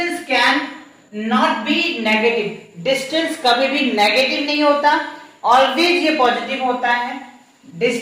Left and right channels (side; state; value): both; identical; correlation 1.00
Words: can not be negative. Distance कभी भी नेगेटिव नहीं होता, ऑलवेज ये पॉजिटिव होता है।